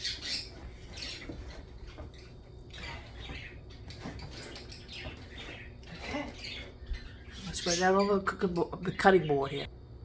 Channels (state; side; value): identical; both; correlation 1.00